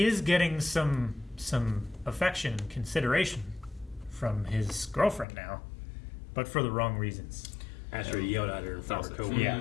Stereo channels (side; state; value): right; drops out; at 5.2 s